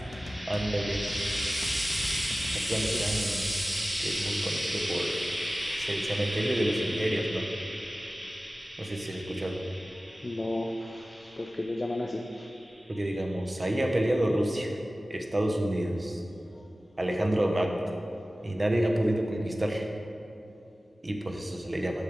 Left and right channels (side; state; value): both; normal; correlation 0.96